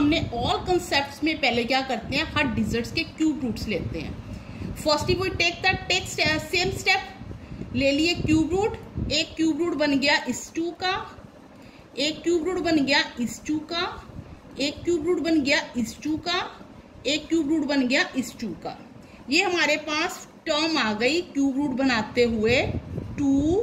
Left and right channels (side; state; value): both; identical; correlation 1.00